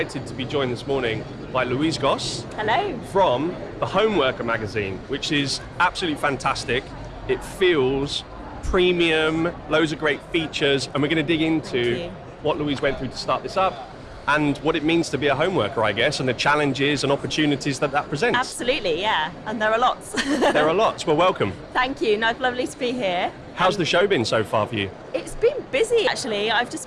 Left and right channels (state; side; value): identical; both; correlation 1.00